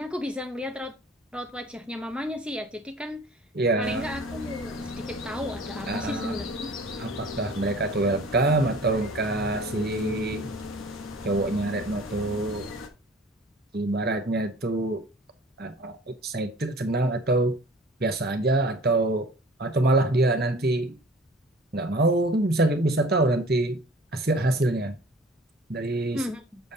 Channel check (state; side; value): normal; both; correlation 0.46